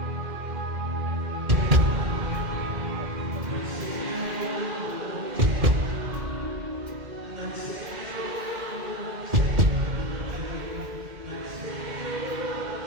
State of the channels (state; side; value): late; left; 2.1 ms